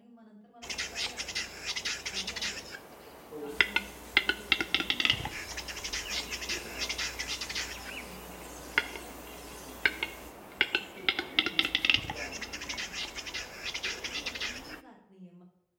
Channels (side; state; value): both; identical; correlation 1.00